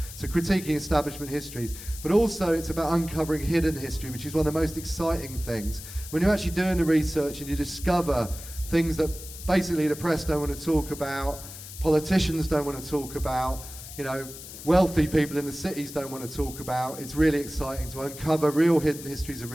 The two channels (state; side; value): noise; left; hiss, 13 dB below the sound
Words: So critiquing establishment histories. But also it's about uncovering hidden history, which is one of the most exciting things. When you're actually doing the research and you discover things that basically the press don't want to talk about, politicians don't want to talk about, you know, wealthy people in the cities don't want to talk about. It's really exciting to uncover real hidden histories of